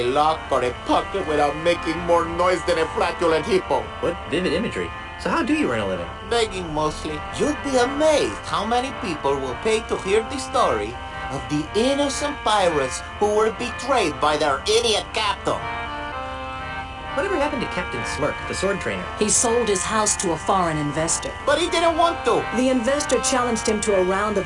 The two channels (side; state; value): both; identical; correlation 1.00